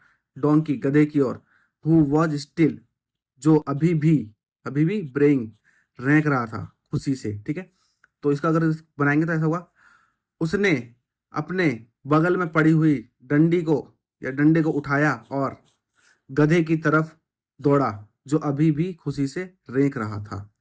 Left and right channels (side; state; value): both; identical; correlation 1.00